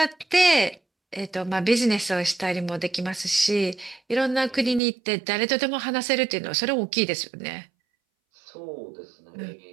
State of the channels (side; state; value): left; drops out; at 4.8 s